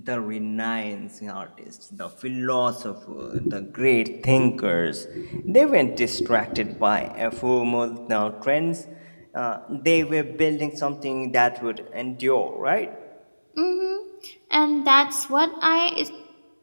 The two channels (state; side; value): inverted; both; correlation -1.00